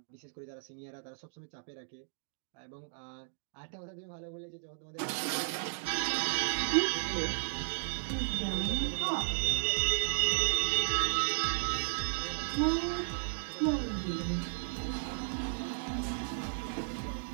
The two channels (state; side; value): silent; left; digital silence